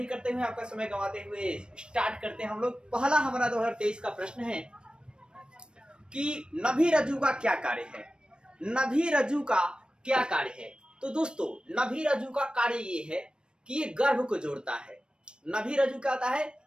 करते हुए आपका समय गंवाते हुए स्टार्ट करते हैं हम लोग। पहला हमारा 2023 का प्रश्न है कि नभी रज्जु का क्या कार्य है। नभी रज्जु का क्या कार्य है? तो दोस्तों नभी रज्जु का कार्य ये है कि ये गर्भ को जोड़ता है। नभी रज्जु क्या होता है?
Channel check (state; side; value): late; left; 0.053 ms